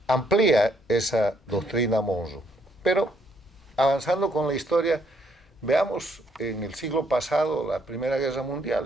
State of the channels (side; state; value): both; normal; correlation 0.70